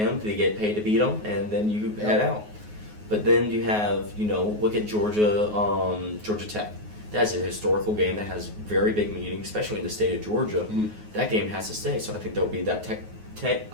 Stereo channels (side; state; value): left; late; 9.5 ms